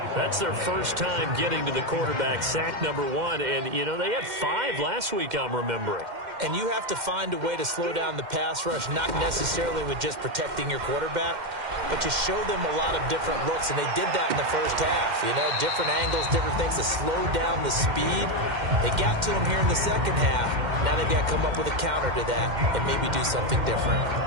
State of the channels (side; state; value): left; late; 2.1 ms